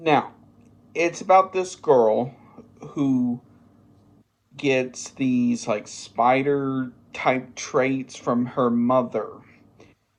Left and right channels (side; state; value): both; identical; correlation 1.00